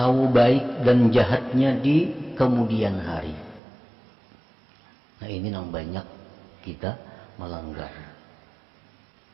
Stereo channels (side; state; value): left; drops out; at 3.6 s